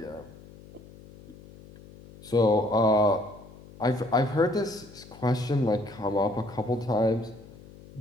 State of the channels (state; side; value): noise; left; hum, 20 dB below the sound